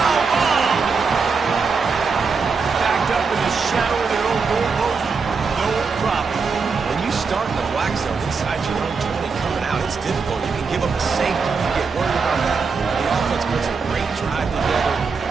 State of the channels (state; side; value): quieter; left; 5.0 dB